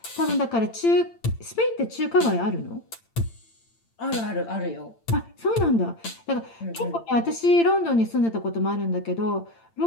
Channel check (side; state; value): right; late; 8.8 ms